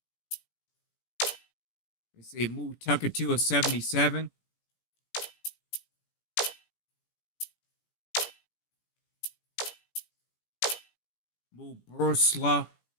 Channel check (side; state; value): right; late; 17 ms